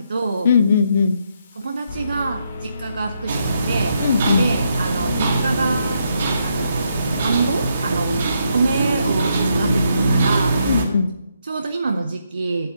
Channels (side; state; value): both; inverted; correlation -0.77